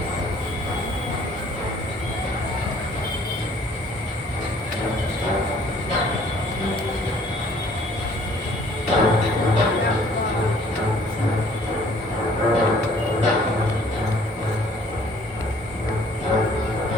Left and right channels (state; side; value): normal; both; correlation 0.57